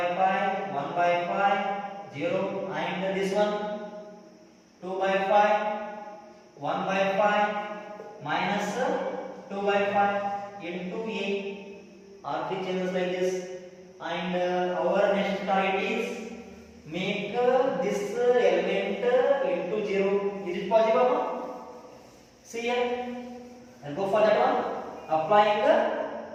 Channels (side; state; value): both; identical; correlation 1.00